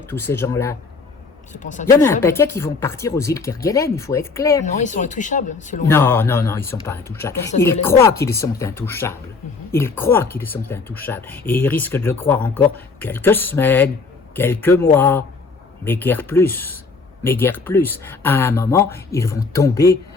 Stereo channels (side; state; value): right; quieter; 4.4 dB